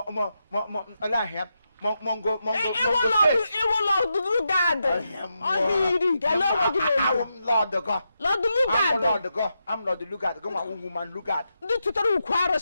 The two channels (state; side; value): inverted; both; correlation -0.85